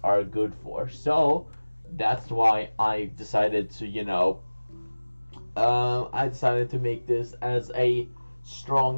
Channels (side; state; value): both; inverted; correlation -1.00